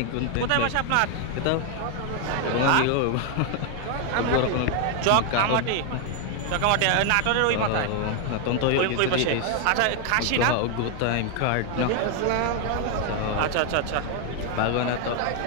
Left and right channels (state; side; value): different; both; correlation 0.00